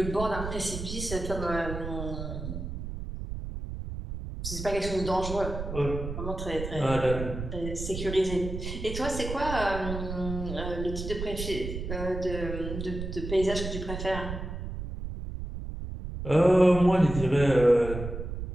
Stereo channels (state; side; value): noise; right; rumble, 6 dB below the sound